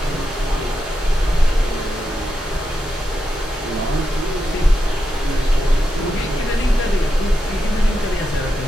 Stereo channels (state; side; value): normal; both; correlation 0.87